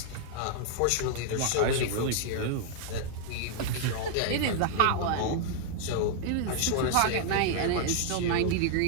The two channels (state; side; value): different; both; correlation 0.00